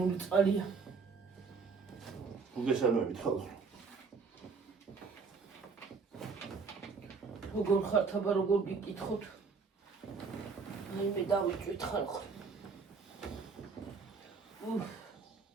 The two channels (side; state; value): left; quieter; 5.0 dB